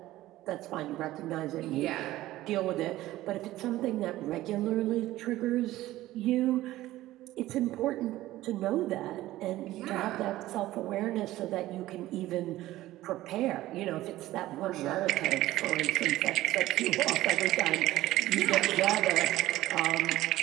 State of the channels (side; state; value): left; quieter; 15.9 dB